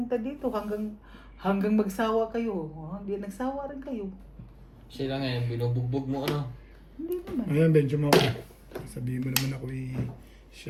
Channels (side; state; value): both; identical; correlation 1.00